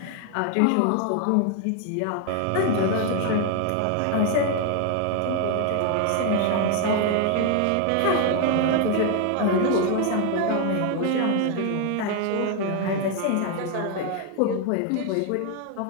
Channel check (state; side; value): different; both; correlation 0.01